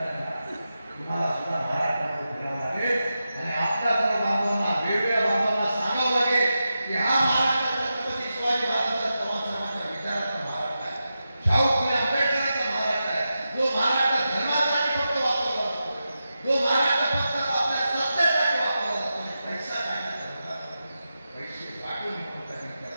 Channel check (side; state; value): both; inverted; correlation -0.90